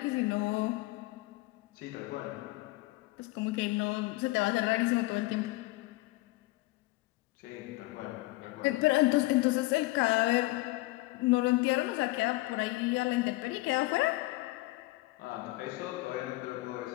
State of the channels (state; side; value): quieter; right; 20.9 dB